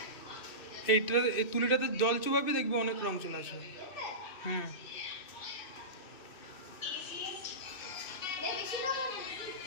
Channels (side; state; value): right; late; 2.5 ms